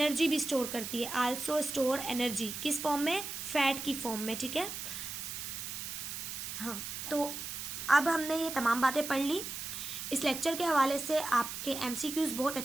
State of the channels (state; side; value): noise; right; hiss, 6 dB below the sound